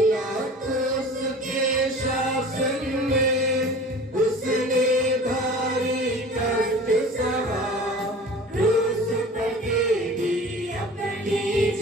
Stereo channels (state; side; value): normal; both; correlation 0.41